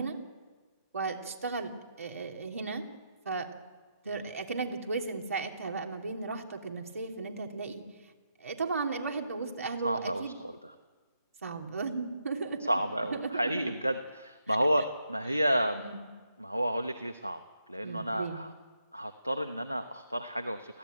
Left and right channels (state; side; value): inverted; both; correlation -0.81